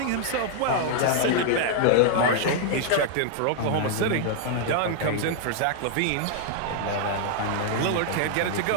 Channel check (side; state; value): both; different; correlation -0.01